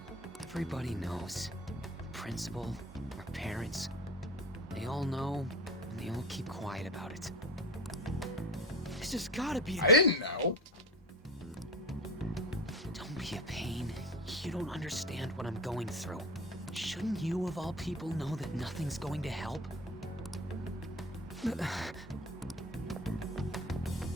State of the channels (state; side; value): normal; both; correlation 0.31